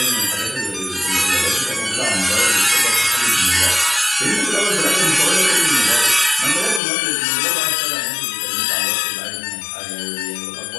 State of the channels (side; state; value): right; drops out; at 6.8 s